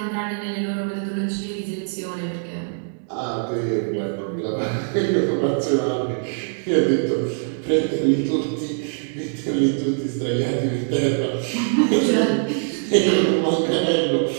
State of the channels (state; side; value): silent; left; 64 dB below the other